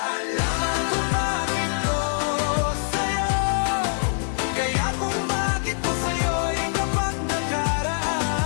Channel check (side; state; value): right; silent; 63 dB below the other